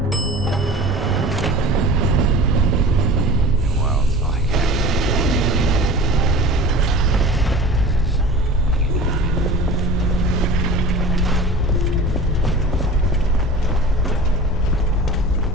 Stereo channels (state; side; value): normal; both; correlation 0.39